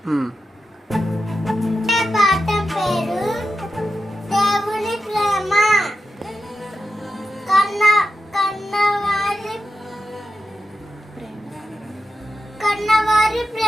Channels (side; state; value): both; normal; correlation 0.89